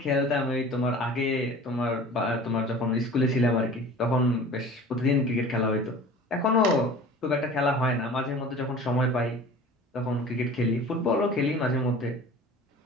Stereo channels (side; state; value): both; normal; correlation 0.41